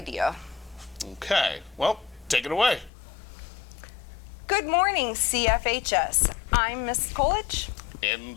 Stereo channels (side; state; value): right; drops out; at 2.9 s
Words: Okay, well, take it away. Good morning, CFHS. I'm Miss Coolidge.